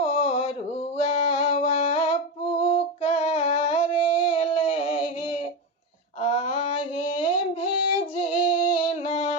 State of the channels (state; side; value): normal; both; correlation 0.14